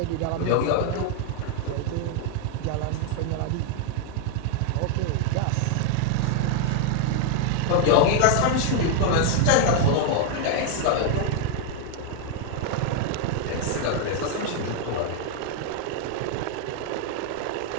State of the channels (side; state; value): both; different; correlation 0.00